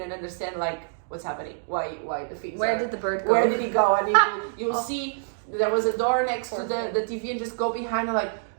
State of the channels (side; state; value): left; silent; digital silence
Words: understand like what's happening, why the things did the bird go? Where did he go? And you'll see there was a door next to the TV, and just go behind and like,